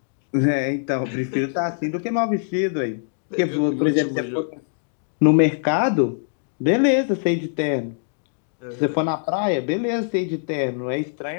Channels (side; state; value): right; silent; digital silence